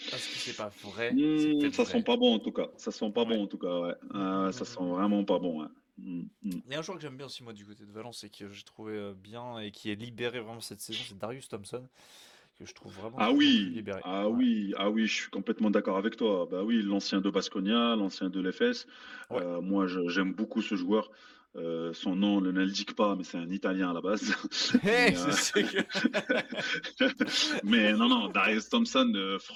Est-ce que c'est pas vrai? C'est peut-être Ça sent vrai. pas bon en tout cas. Ça sent pas Ouais. bon en tout cas, ouais. Mm, mm, Ça mm, sent mm. vraiment pas bon, ouais. Mm, mm. Il y a un joueur que j'aime bien aussi moi du côté de Valence et que j'ai trouvé bien et qui est libéré vraiment cette saison, c'est Darius Thompson, que je trouve vraiment de Ah plus en plus oui, libéré. ah Ouais. oui, ah oui, je suis complètement d'accord avec toi. Bah oui, l'ancien de Baskonia, l'ancien de l'EFS. Ouais. Moi, j'aime beaucoup ce joueur. Son nom ne l'indique pas, mais c'est un Italien à la base. Hey, Mais, je sais que... mais non, Darius Thompson,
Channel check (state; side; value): identical; both; correlation 1.00